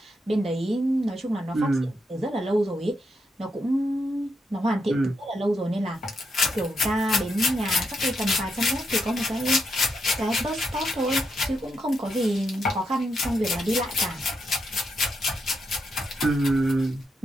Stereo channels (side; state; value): both; normal; correlation 0.81